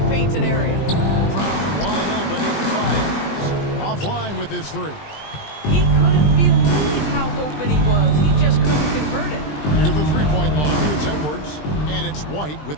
painted area. Brown wide open, 8-5. Offline with his 3. He couldn't believe how open he was. He just couldn't convert it. Here's the 3-point line. It's Edwards, and it's White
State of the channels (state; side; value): late; right; 20 ms